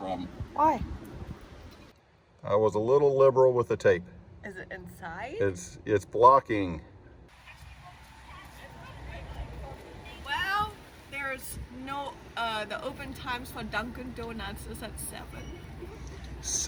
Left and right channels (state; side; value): identical; both; correlation 1.00